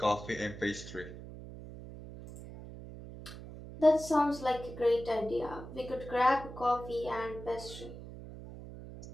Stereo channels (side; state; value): right; noise; hum, 13 dB below the sound